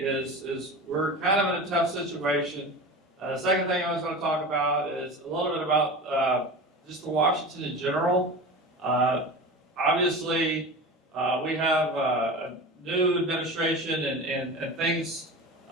we're kind of in a tough situation. The second thing I was going to talk about is a little bit about just the Washington in general. Obviously, we have a new administration and things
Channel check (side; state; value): both; normal; correlation 0.31